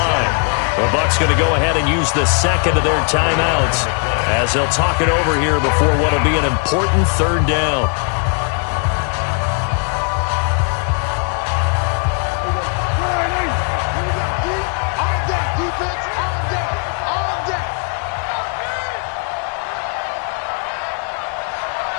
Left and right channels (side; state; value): right; quieter; 39.4 dB